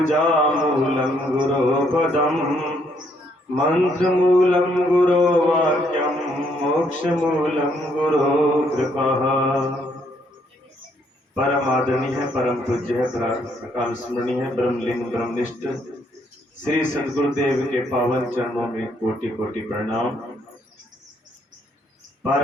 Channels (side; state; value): both; normal; correlation 0.70